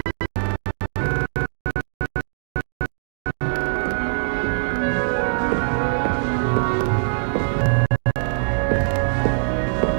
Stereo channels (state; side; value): silent; left; digital silence